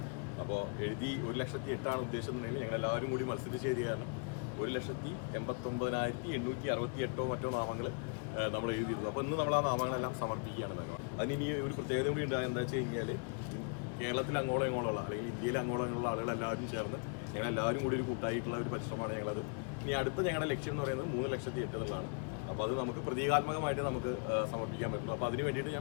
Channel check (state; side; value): quieter; right; 39.5 dB